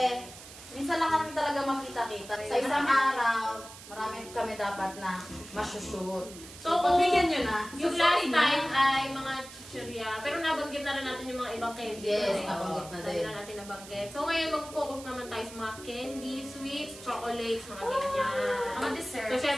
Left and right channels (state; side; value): noise; right; hiss, 16 dB below the sound